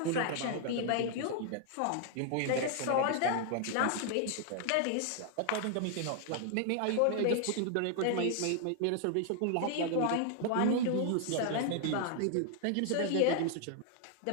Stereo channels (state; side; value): different; both; correlation 0.00